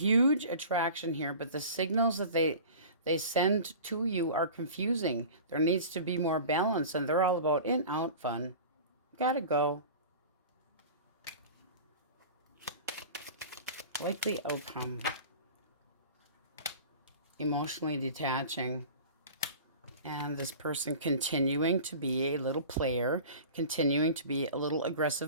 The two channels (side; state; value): both; inverted; correlation -0.38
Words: attraction here, but the signals that they send to you are confusing. There needs to be more balance, and they're all about in, out, fun. Gotta go. Likely outcome. Emotionally detaching. And this person continuing to be a little player, continuing to be a little